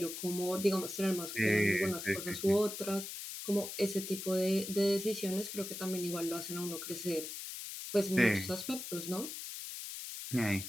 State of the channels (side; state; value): left; noise; hiss, 8 dB below the sound